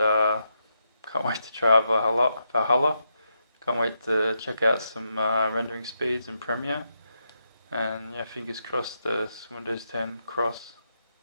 wait to try Valhalla. Can't wait to check out some rendering speeds in Premiere. And yeah, fingers crossed this Windows 10 cross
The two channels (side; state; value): both; inverted; correlation -0.83